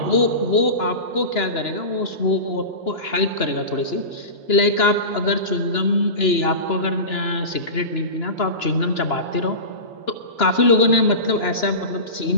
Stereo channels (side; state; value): right; late; 2.9 ms